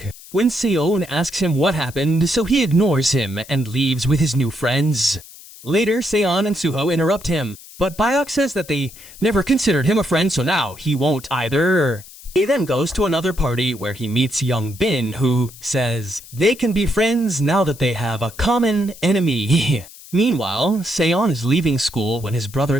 When Se-yoon asks him what happened, so he ignores him and leaves with his new friends. Later, Se-yeon and Suho interrupt him, but Bayok says that they never considered him a friend, so now he won't either. He then goes to another party where he meets Young Bin, who says they can be friends now that they have a common enemy. Meanwhile, Se-yeon is leaving school when his brother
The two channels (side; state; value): left; noise; hiss, 19 dB below the sound